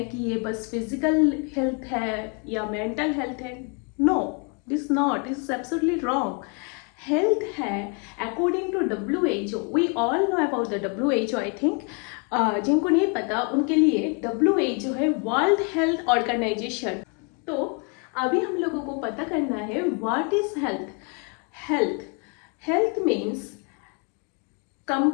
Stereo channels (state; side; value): quieter; right; 34.3 dB